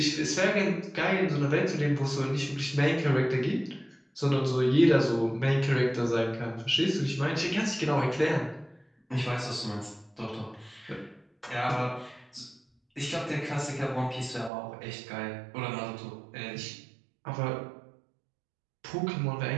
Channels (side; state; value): left; drops out; at 14.5 s